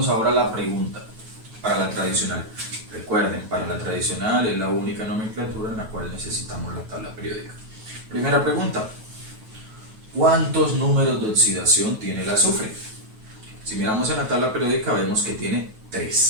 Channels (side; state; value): left; late; 9.2 ms